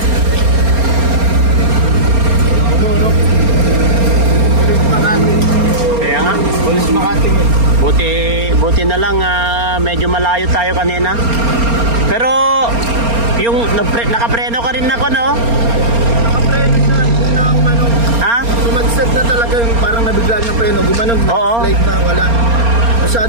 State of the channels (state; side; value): late; left; 4.3 ms